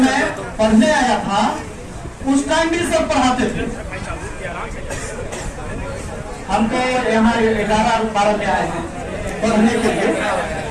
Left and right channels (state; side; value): identical; both; correlation 1.00